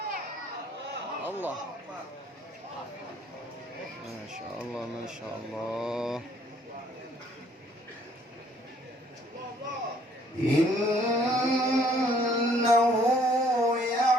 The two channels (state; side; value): normal; both; correlation 0.62